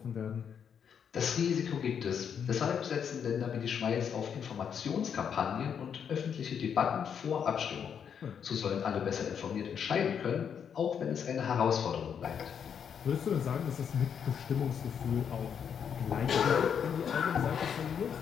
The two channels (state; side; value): quieter; right; 7.7 dB